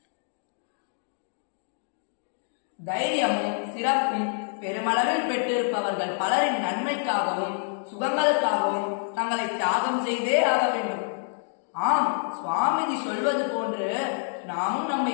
தைரியமும் சிறப்பும் பெருமளவில் பெற்றிருப்பவர்கள் பலரின் நன்மைக்காகவும் சுகங்களுக்காகவும் தங்களை தியாகம் செய்தே ஆக வேண்டும். ஆம், சுவாமிஜி சொல்வது போன்று நாமும் நம்மை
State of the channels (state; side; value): silent; right; 60 dB below the other